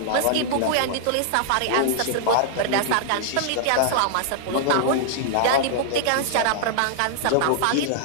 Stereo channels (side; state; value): both; different; correlation -0.01